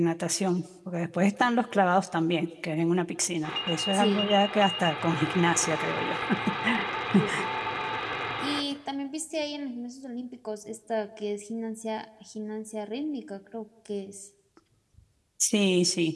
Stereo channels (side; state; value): both; identical; correlation 1.00